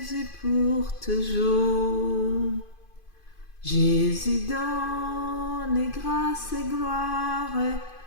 pour toujours. Jésus donne grâce et gloire,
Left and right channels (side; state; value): right; late; 2.5 ms